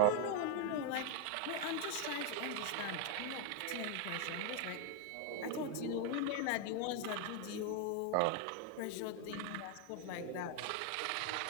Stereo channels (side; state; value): both; different; correlation 0.01